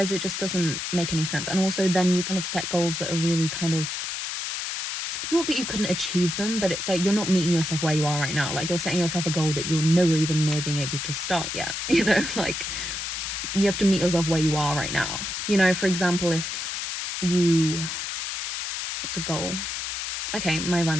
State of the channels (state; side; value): noise; left; hiss, 4 dB below the sound